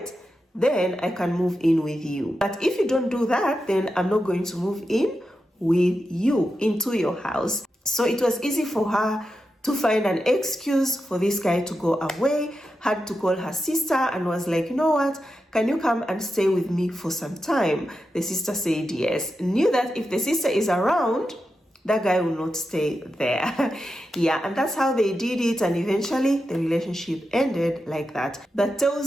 then I can move in with you. But if you don't do that, then I'm not going to move in with you into your house. So it was easy for her to find an excuse for this guy to go away, had to call her sister and was like, you know what, can you come and stay with me for some time? The sister said yes. Knew that if the sister is around, that guy will not stay there. Yeah, and that's how they did it, and eventually the relationship ended like that. That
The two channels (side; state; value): both; normal; correlation 0.89